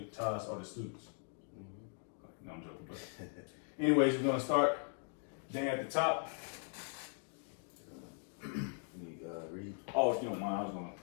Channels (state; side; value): silent; right; 51 dB below the other